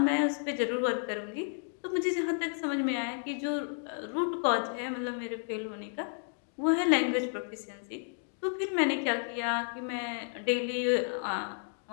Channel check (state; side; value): silent; right; 56 dB below the other